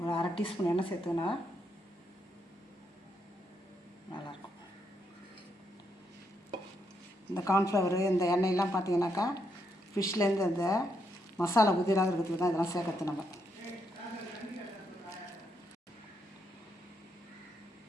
1/2 டீஸ்பூன் எண்ணெய் சேர்த்துக்கினா நல்லாயிருக்கும். இந்த கார்ன்ஃப்ளவரு இந்த எண்ணெயெல்லாம் பார்த்தீங்கன்னாக்கா ஃபிஷ்லேருந்து அந்த மசாலா உதிராக இருக்கிறதுக்கு தான் இதெல்லாம் சேர்க்கறது. நம்ம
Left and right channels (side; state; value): both; normal; correlation 0.78